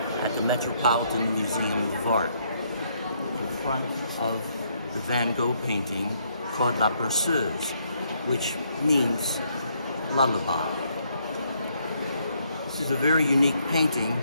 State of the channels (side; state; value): both; inverted; correlation -0.72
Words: the Metropolitan Museum of Art in front of the Van Gogh painting called La Berceuse, which means lullaby. This is a very unique painting